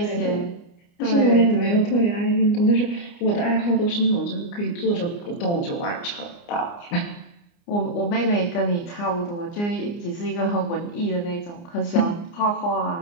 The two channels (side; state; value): right; late; 29 ms